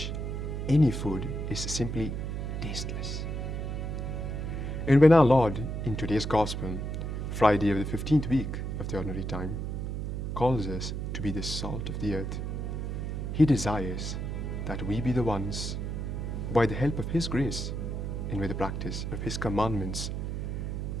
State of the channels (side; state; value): right; noise; hum, 3 dB below the sound